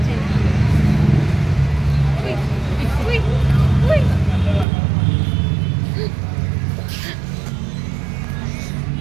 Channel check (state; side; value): drops out; left; at 4.7 s